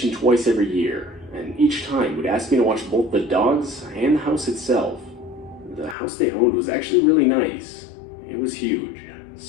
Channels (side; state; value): right; drops out; at 6.0 s